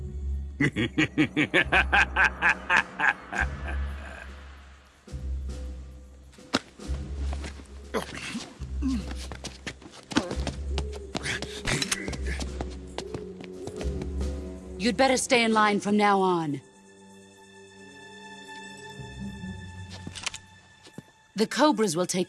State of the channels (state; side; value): identical; both; correlation 1.00